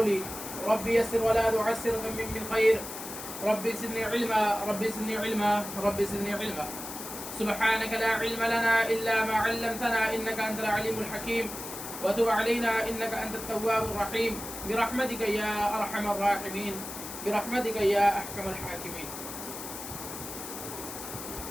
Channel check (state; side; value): noise; left; hiss, 9 dB below the sound